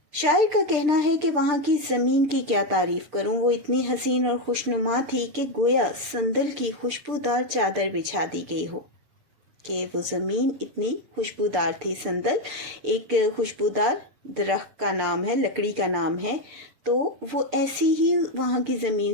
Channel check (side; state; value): left; late; 6.8 ms